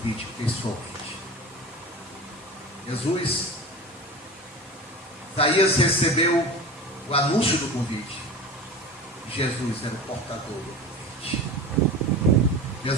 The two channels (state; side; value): normal; both; correlation 0.32